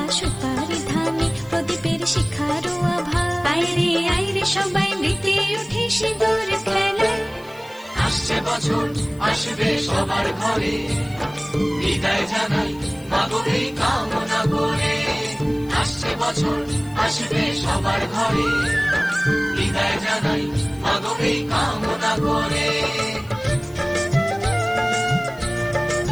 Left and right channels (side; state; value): left; noise; hiss, 25 dB below the sound